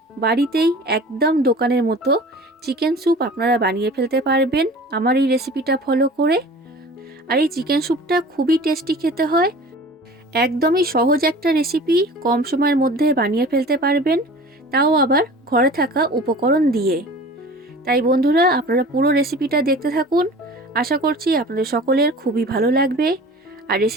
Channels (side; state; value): both; normal; correlation 0.41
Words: বাড়িতেই একদম দোকানের মতো চিকেন স্যুপ আপনারা বানিয়ে ফেলতে পারবেন আমার এই রেসিপিটা ফলো করে। আর এই চিকেন স্যুপটা খুবই টেস্টি খেতে হয়, একদমই সহজ একটা রেসিপি, কম সময়ের মধ্যে বানিয়ে ফেলতে পারবেন, তাও আবার ঘরে থাকা উপকরণ দিয়ে। তাই বন্ধুরা, আপনারা পুরো রেসিপিটা দেখতে থাকুন। আশা করছি আপনাদের সকলের খুবই ভালো লাগবে। আর